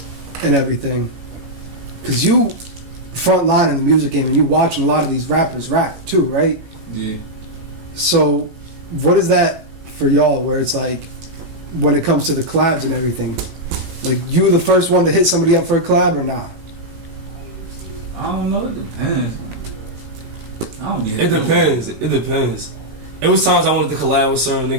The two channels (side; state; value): left; late; 18 ms